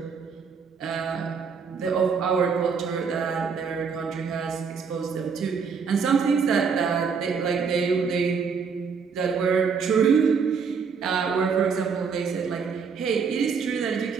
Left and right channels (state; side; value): quieter; left; 5.8 dB